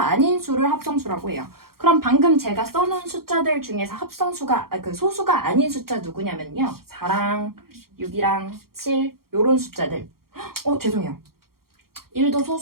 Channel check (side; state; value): left; late; 0.93 ms